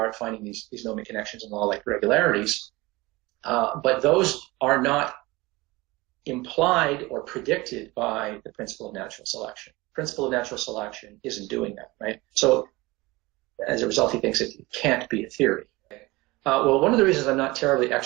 at finding these gnomic connections and law-like regularities. But those are not implied or predicted by the principle of natural selection. The principle of natural selection isn't doing that, right? So as a result, he thinks it can't be a theory. Well, one of the reasons I'm not terribly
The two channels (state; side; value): quieter; left; 21.7 dB